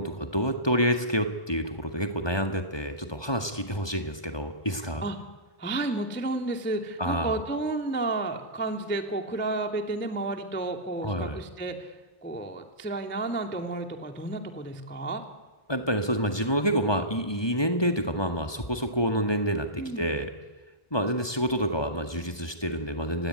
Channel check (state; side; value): late; right; 1.2 ms